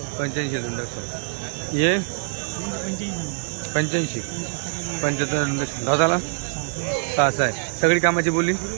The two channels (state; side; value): silent; left; digital silence